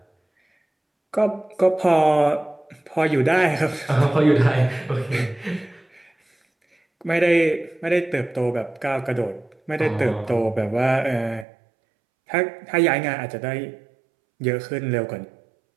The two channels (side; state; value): left; drops out; at 11.5 s